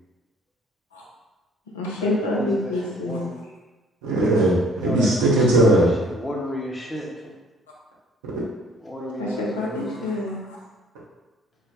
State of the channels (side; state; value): both; normal; correlation 0.55